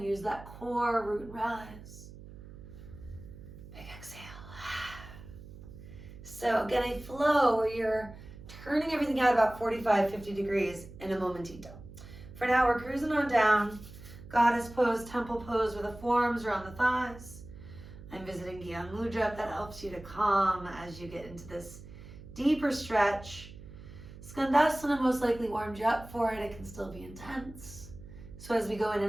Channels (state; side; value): noise; right; hum, 16 dB below the sound